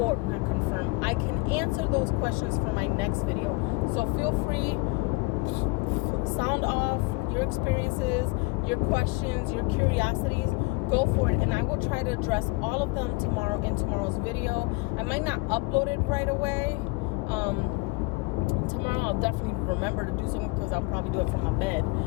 not confirm, I can answer those questions for my next video. So feel free, sound off your experiences, your questions, your curiosities. Go for it, and I will try to address all of them tomorrow in tomorrow's video. I might not upload it right away. Tomorrow I'll definitely remember to do something, because I'll probably do it from my bed.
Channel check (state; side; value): quieter; right; 25.1 dB